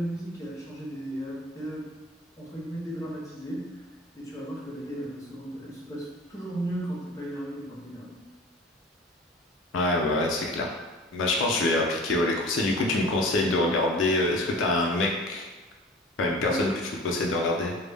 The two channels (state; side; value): normal; both; correlation 0.40